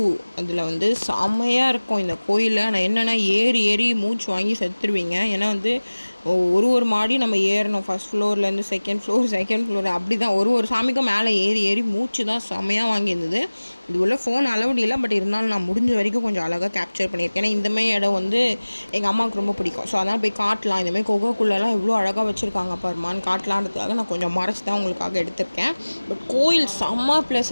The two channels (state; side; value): inverted; both; correlation -1.00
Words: அதில் வந்து செம்மையாக இருக்கும் இந்த கோயில். ஆனால் என்னென்னா ஏறி ஏறி மூச்சு வாங்கி செத்துருவீங்க. ஏன்னா வந்து ஒரு மாடி நம்ம ஏறணும், ஃபஸ்ட் ஃப்ளோர்லேருந்து செகண்ட் ஃப்ளோர் அப்படி தான். ஒரு சாமிக்கும் மேலே ஏறி ஏறி மூச்சு தான் செம்மையாக வாங்கியிருந்தது. இது உள்ள ஃபோன் அலவுட் இல்லை, பட் இருந்தாலும் நான் முடிஞ்ச வரைக்கும் கொஞ்சம் அழகாக கேப்சர் பண்ணியிருக்கேன். ஏன்னா இந்தமாதிரி இடம் வந்து எங்கள் அம்மாவுக்கு ரொம்ப பிடிக்கும். ஸோ அதனால் போய் காட்டலாம், இந்தமாதிரி கொகைக்குள்ளெல்லாம் எவ்வளோ அழகாக வச்சுருக்காங்க பாருமான்னு காட்டலான்றதுக்காக நான் கொஞ்சம் மறைச்சி தான் உங்களுக்காக எடுத்திருக்கேன். பட் கோயில் செம்ம